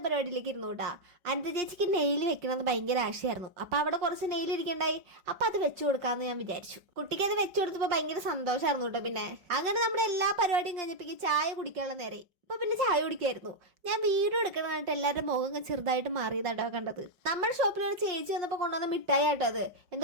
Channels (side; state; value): left; late; 5.3 ms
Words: പരിപാടിയിലേക്ക് ഇരുന്നു കേട്ടാ. അനന്ത ചേച്ചിക്ക് നെയിൽ വെക്കണമെന്ന് ഭയങ്കര ആശയായിരുന്നു. അപ്പൊ അവിടെ കുറച്ച് നെയിൽ ഇരിക്കണ്ടായി. അപ്പൊ അത് വെച്ചു കൊടുക്കാന്ന് ഞാൻ വിചാരിച്ചു. കുട്ടിക്ക് അത് വെച്ചു കൊടുത്തപ്പോ ഭയങ്കര സന്തോഷമായിരുന്നു കേട്ടോ. പിന്നെ അങ്ങനെ നമ്മുടെ എല്ലാ പരിപാടിയും കഴിഞ്ഞപ്പോ ചായ കുടിക്കാനുള്ള നേരെ. അപ്പൊ പിന്നെ ചായ കുടിക്കായിരുന്നു. ഞാൻ വീഡിയോ എടുക്കണമായിട്ട് എല്ലാവരുടെ മുഖം ചെറുതായിട്ട് മാറിയതാട്ടോ കണ്ടത്. നമ്മുടെ ഷോപ്പിൽ ഒരു ചേച്ചി വന്നപ്പോൾ കൊണ്ടുവന്ന മിഠായി ആട്ടോ അത്.